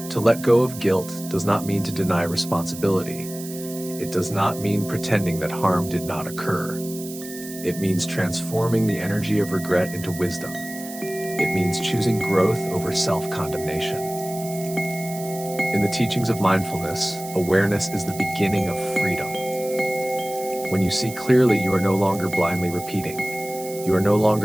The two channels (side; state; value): right; noise; hiss, 13 dB below the sound